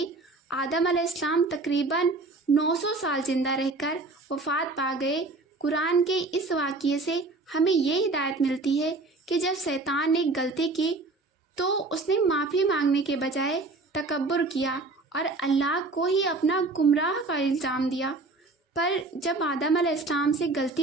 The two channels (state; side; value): quieter; left; 3.3 dB